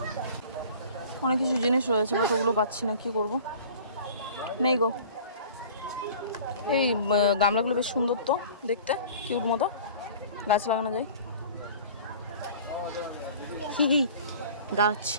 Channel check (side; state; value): both; inverted; correlation -0.44